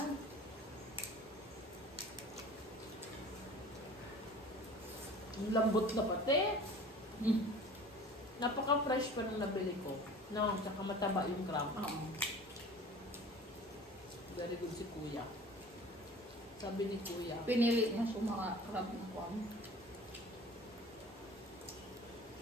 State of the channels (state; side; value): normal; both; correlation 0.43